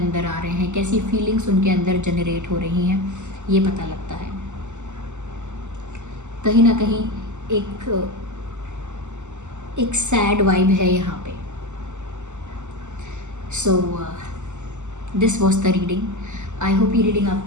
आ रहे हैं, कैसी फीलिंग्स उनके अंदर जनरेट हो रही हैं, ये पता लगता है। कहीं ना कहीं एक सैड वाइब है यहाँ पे। So this was the reading. I hope ये रीडिंग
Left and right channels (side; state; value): left; late; 0.84 ms